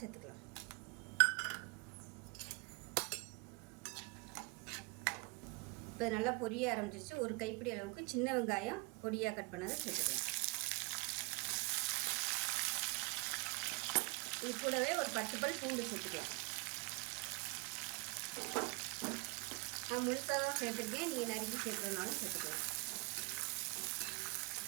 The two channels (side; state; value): left; quieter; 30.6 dB